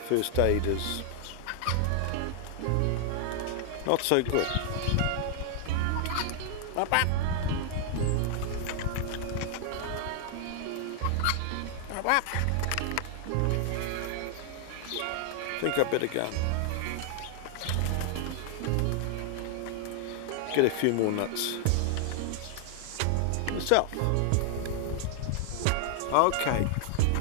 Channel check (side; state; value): both; different; correlation 0.00